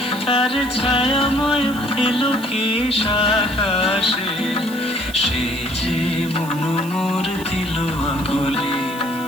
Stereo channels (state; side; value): noise; right; hiss, 16 dB below the sound